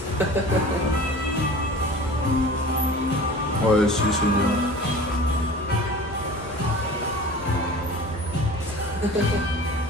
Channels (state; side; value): normal; both; correlation 0.40